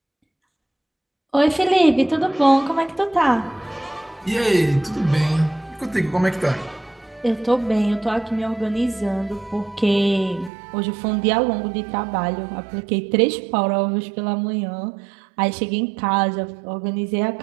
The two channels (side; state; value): left; drops out; at 10.5 s